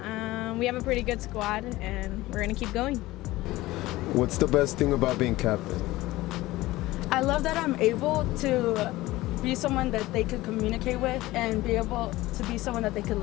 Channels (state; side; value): quieter; right; 18.1 dB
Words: We have a pretty good squad, and we're gonna keep going. What's the best thing about being captain? I love that I'm able to be someone that they could communicate with and be able to be someone that they could